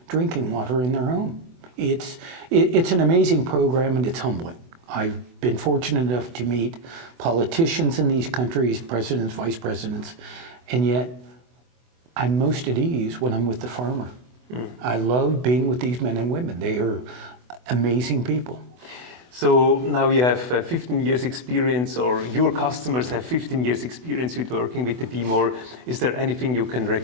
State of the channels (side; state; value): left; late; 24 ms